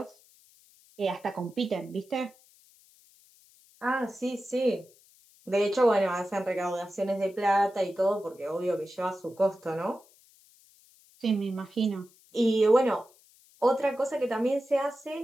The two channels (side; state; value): left; noise; hiss, 28 dB below the sound